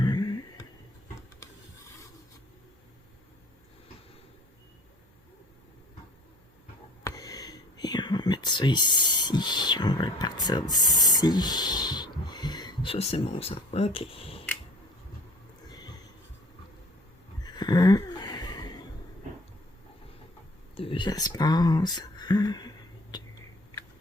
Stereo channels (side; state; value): both; normal; correlation 0.48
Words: Et on va mettre ça ici. On va partir d'ici. Ça, c'est mon sang. OK. 1, 2 espaces. 1, 2,